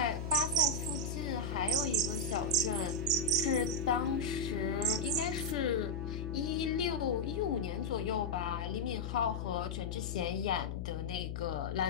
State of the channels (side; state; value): left; noise; hum, 4 dB below the sound